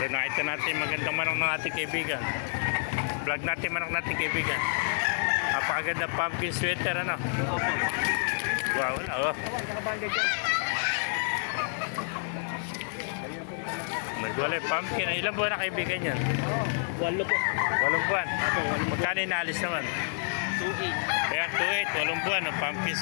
nakita natin magandang manok ng ating kaibigan. Vlog natin manok natin kaibigan. Napakaganda pumpkin sweater, ano? Wow, wala oh. Nagwalay pumpkin. Ilang buwan na kaibigan yan? 8 po. 8 buwan. Magkano inaalis naman? 2.8. Kaya 2.8, 8 buwan ng pumpkin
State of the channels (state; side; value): silent; right; digital silence